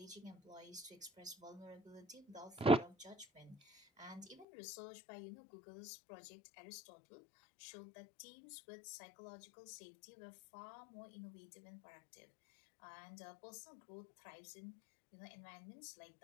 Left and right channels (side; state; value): right; drops out; at 4.5 s